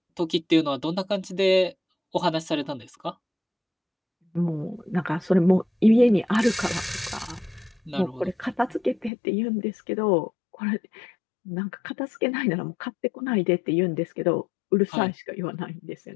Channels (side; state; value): right; drops out; at 9.1 s